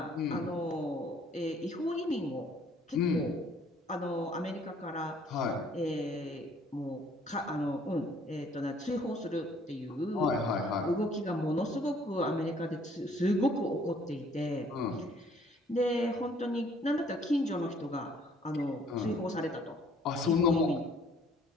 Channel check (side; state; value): both; normal; correlation 0.60